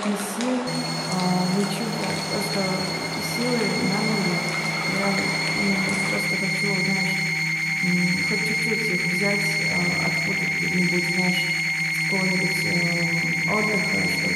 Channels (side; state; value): both; identical; correlation 1.00